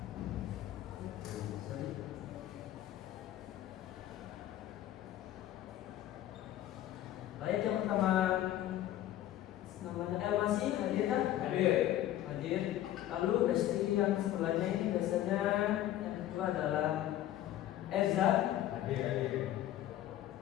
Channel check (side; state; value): right; quieter; 13.0 dB